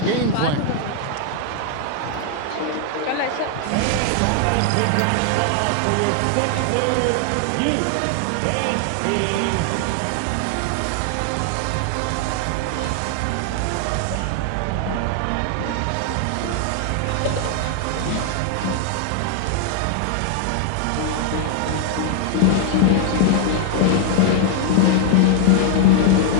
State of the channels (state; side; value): different; both; correlation 0.00